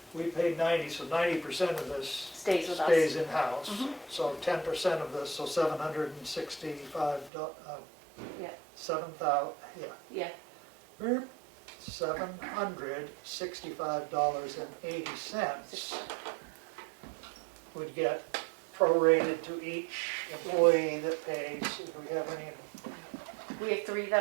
We paid 90, so 90% of this Stays with us. stays in-house. So 10% of this, so $765, Yeah. 7,000, Yeah. $765.80 would get prorated to each employee that pays. Do we have any? We have 3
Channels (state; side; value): drops out; left; at 7.3 s